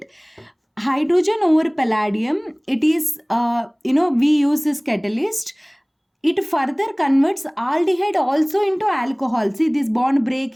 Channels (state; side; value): identical; both; correlation 1.00